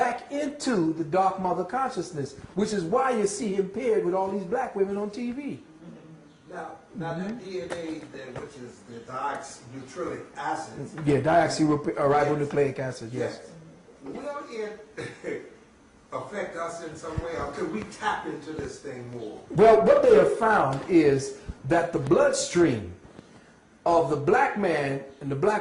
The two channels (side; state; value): both; identical; correlation 1.00